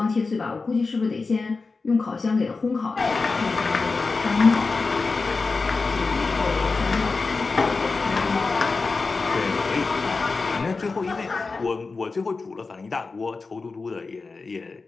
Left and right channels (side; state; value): right; quieter; 4.1 dB